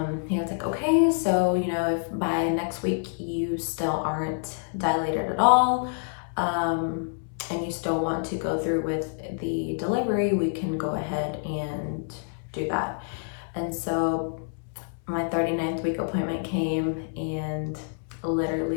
he was like, okay, so, you know, if by next week you still aren't dilated at all, and you still want to go through with the delivery, we can go ahead and do that. And so my 39th week appointment came, and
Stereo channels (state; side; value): silent; right; 60 dB below the other